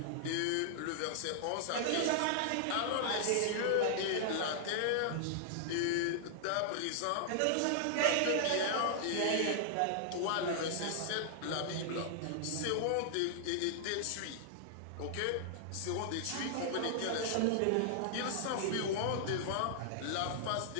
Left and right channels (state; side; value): different; both; correlation -0.01